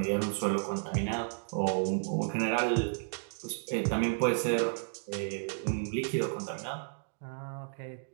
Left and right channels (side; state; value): left; silent; digital silence